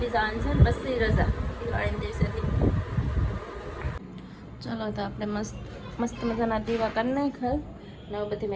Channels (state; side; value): identical; both; correlation 1.00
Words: દી જવાનું છે ને, પછી રજા દિવાળીના દિવસેથી. ચલો તો આપણે મસ્ત મજાના દીવા કરી નાખ્યા. ને બધી